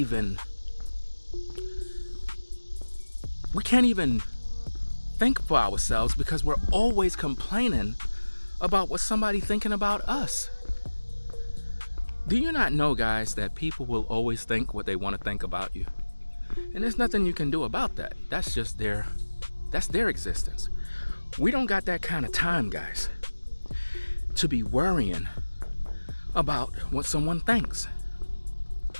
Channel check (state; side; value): inverted; both; correlation -1.00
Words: think for ourselves, because we're always complaining about what somebody's thinking about us. Do you not know, guys, that people will always think what they want to think about you? And there's nothing you can do about that. That's just their existence. We don't got that kind of time, guys, to be worrying about what someone thinks.